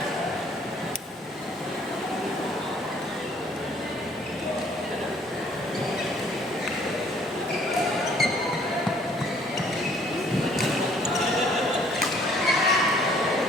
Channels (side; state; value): both; normal; correlation 0.60